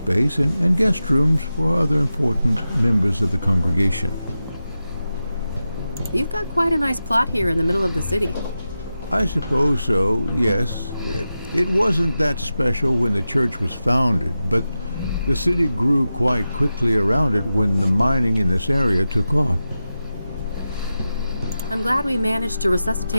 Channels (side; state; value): both; inverted; correlation -0.92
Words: and guest rooms for other important members of the congregation. You've got quite a nice plot here in the middle of the city. I suppose so, yes. It wasn't that special when the church was founded, but The city grew quite quickly around it when the mining in this area took off. I'm glad we managed to